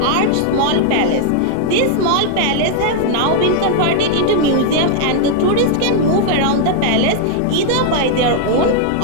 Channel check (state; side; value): different; both; correlation 0.00